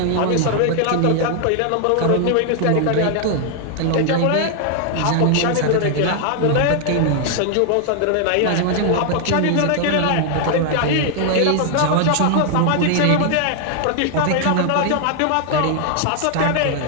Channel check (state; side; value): different; both; correlation 0.00